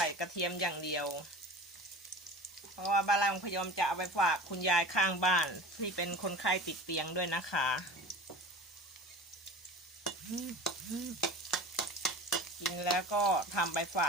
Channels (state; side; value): normal; both; correlation 0.37